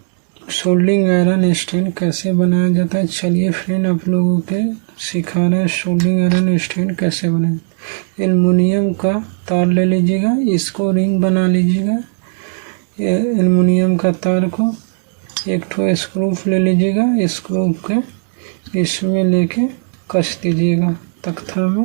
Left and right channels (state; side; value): silent; left; 62 dB below the other